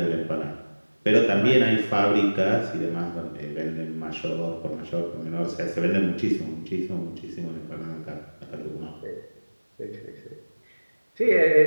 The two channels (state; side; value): inverted; both; correlation -1.00